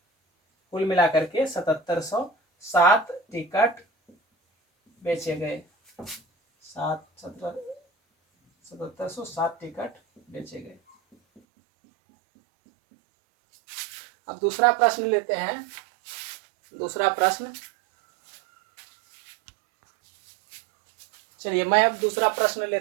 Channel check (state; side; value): drops out; left; at 11.4 s